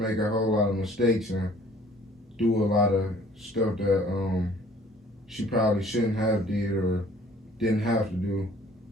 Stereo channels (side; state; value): both; normal; correlation 0.54